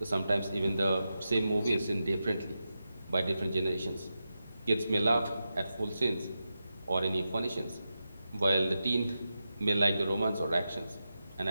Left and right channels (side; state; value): both; inverted; correlation -0.90